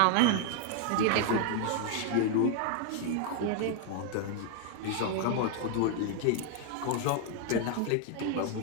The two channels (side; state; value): both; different; correlation 0.00